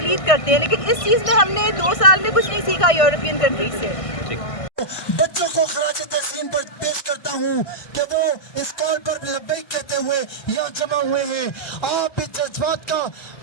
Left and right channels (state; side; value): late; right; 1.5 ms